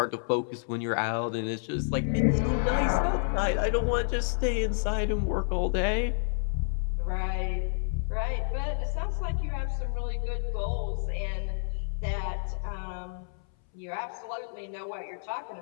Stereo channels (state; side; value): silent; right; 58 dB below the other